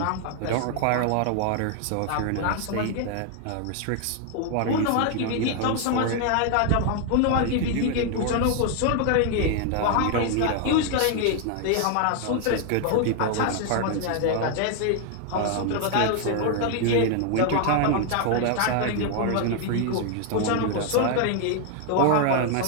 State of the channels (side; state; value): both; different; correlation 0.00